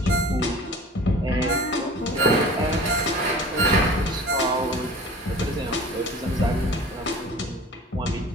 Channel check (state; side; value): normal; both; correlation 0.43